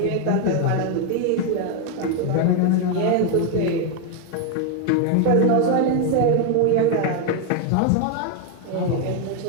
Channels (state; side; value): different; both; correlation 0.01